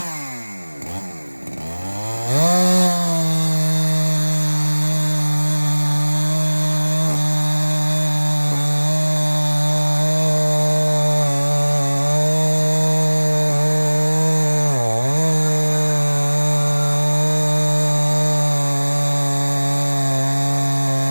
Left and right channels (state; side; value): inverted; both; correlation -1.00